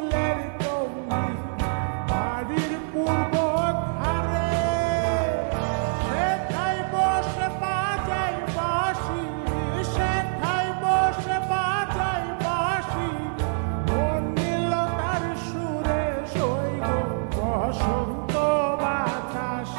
টঙ্গি বাড়ির পূর্ব ধারে, সেথায় বসে বাজাই বাঁশি, সেথায় বসে বাজাই বাঁশি, মন নিল তার সুরে, সইগ বসন্ত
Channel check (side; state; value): left; silent; digital silence